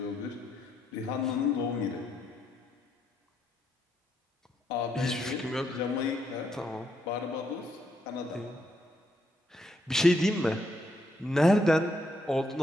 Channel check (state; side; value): normal; both; correlation 0.76